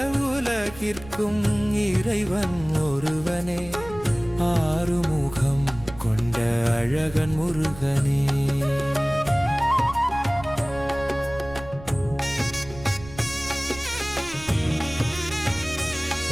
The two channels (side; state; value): right; noise; rumble, 16 dB below the sound